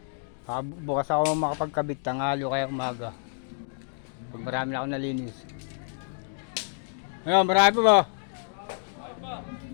Bukas ako makapagkabit, tanghalo kaya umaga. Pag marami na ako nalinis. Ayun, marami pa ba?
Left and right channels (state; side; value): silent; right; digital silence